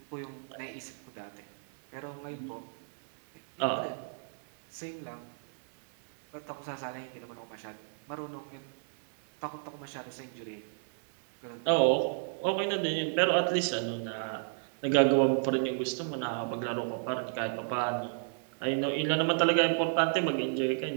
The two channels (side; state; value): left; silent; digital silence